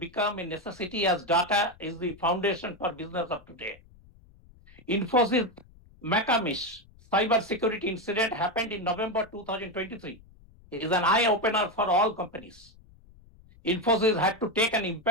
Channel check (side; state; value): left; noise; rumble, 25 dB below the sound